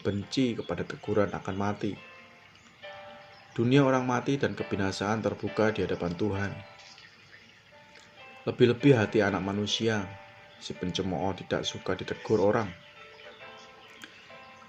kepada teguran akan mati. Dunia orang mati dan kebinasaan terbuka di hadapan Tuhan. Lebih-lebih hati anak manusia, si pencemooh tidak suka ditegur orang.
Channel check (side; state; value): both; identical; correlation 1.00